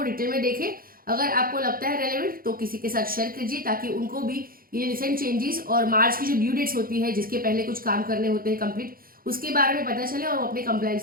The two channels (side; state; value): left; late; 0.42 ms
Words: डिटेल में देखें। अगर आपको लगता है रेलेवेंट तो किसी के साथ शेयर कीजिए, ताकि उनको भी ये रिसेंट चेंजेस और मार्च की जो ड्यू डेट्स होती है, जिसके पहले कुछ काम करने होते हैं कंप्लीट, उसके बारे में पता चले और अपने